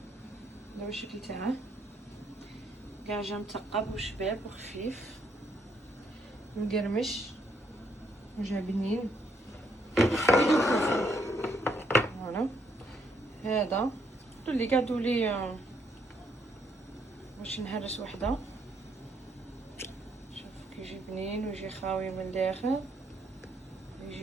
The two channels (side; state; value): both; normal; correlation 0.72